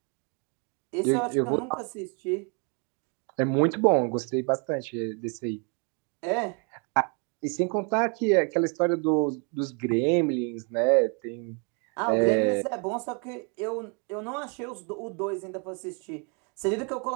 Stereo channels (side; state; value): left; quieter; 35.9 dB